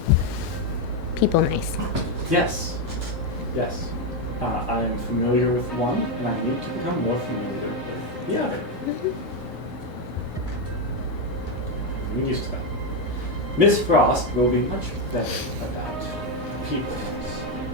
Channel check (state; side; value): normal; both; correlation 0.06